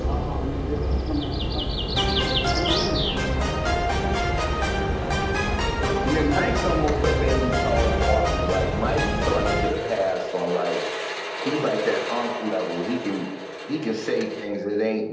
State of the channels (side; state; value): both; identical; correlation 1.00